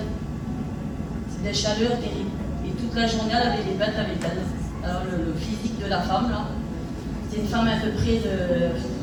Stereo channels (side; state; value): both; identical; correlation 1.00